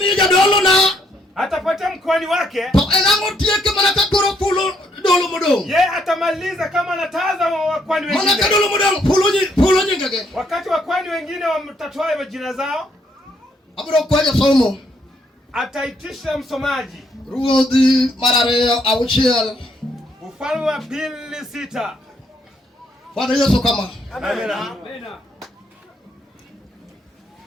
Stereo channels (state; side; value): normal; both; correlation 0.71